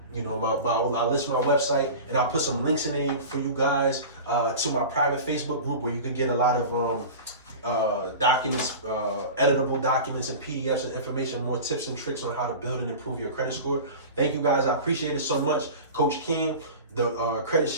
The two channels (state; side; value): inverted; both; correlation -0.33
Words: You know, I'll list my website, and I'll put some links in there for you guys to my private Facebook group where you can get a lot of documents, editable documents and PDFs and information, more tips and tricks on how to build and improve your credit score. Thank you guys. I appreciate it so much. Coach King, the credit